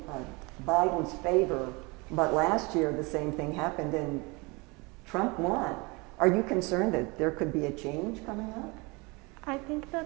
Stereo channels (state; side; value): quieter; left; 27.0 dB